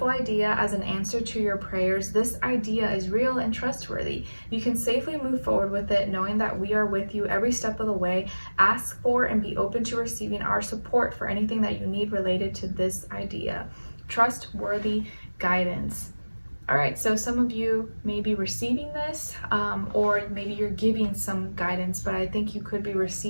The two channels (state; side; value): inverted; both; correlation -1.00